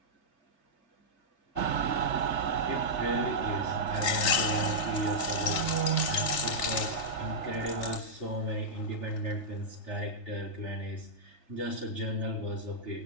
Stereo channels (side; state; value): right; late; 3.3 ms